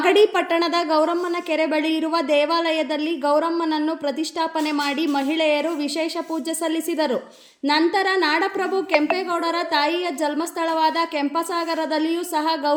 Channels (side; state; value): both; identical; correlation 1.00